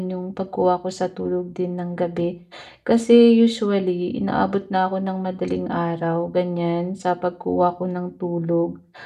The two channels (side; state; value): both; identical; correlation 1.00